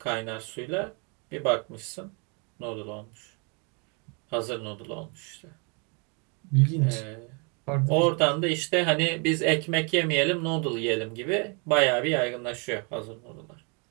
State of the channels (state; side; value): quieter; left; 34.9 dB